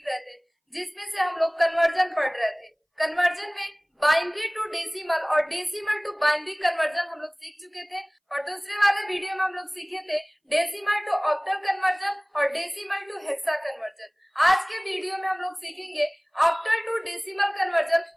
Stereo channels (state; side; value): identical; both; correlation 1.00